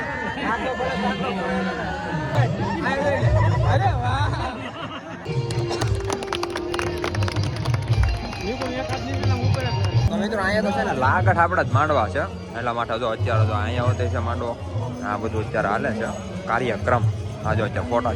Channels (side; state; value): both; identical; correlation 1.00